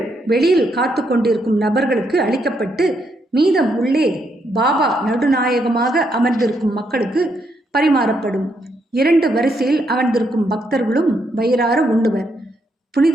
வெளியில் காத்து கொண்டிருக்கும் நபர்களுக்கு அளிக்கப்பட்டு மீதம் உள்ளே பாபா நடுநாயகமாக அமர்ந்திருக்கும் மக்களுக்கு பரிமாறப்படும். 2 வரிசையில் அமர்ந்திருக்கும் பக்தர்களும் வயிறார உண்ணுவர்.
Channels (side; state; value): both; normal; correlation 0.77